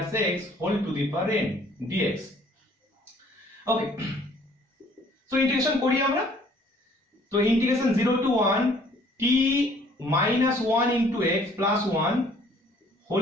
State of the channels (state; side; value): normal; both; correlation 0.58